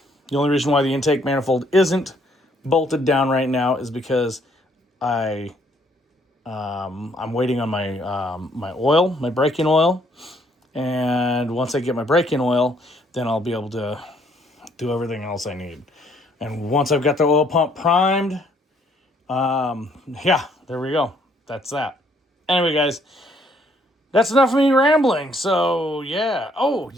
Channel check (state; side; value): normal; both; correlation 0.66